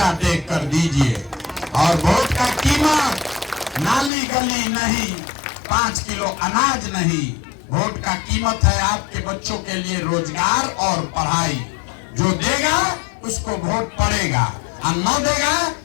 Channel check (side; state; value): right; drops out; at 4.1 s